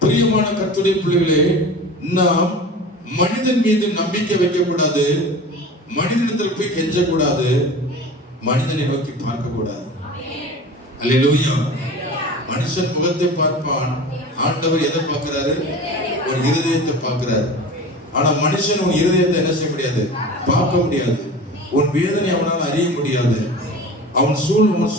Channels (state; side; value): normal; both; correlation 0.36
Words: பிரியமான கர்த்தருடைய பிள்ளைகளே, நாம் மனிதன் மீது நம்பிக்கை வைக்க கூடாது. மனிதனிடத்தில் போய் கெஞ்ச கூடாது. மனிதனை நோக்கி பார்க்க கூடாது. அல்லேலூயா. மனுஷன் முகத்தை பார்ப்பான், ஆண்டவர் எதை பார்க்கிறாரு? ஒரு இருதயத்தை பார்க்கிறாரு. ஆனா மனுஷன் உன் இருதயத்தை என்ன செய்ய முடியாது? பார்க்க முடியாது. உன் வேதனை அவனால் அறிய முடியாது. உன்